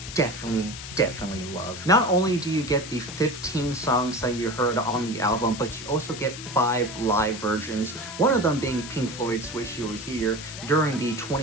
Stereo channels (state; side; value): noise; left; hiss, 11 dB below the sound